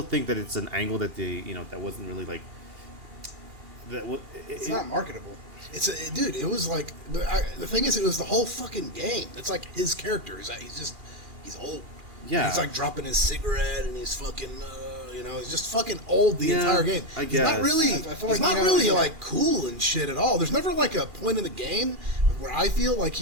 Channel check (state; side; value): late; left; 2.4 ms